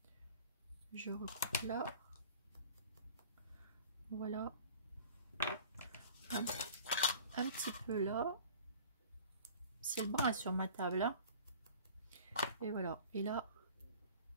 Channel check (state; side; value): inverted; both; correlation -0.44